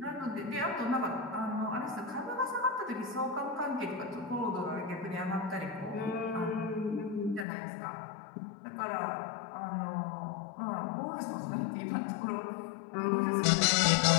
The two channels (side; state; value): right; drops out; at 7.5 s